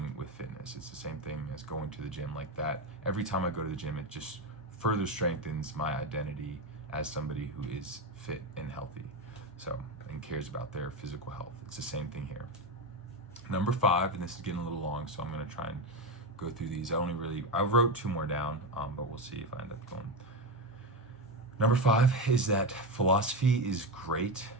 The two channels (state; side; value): normal; both; correlation 0.15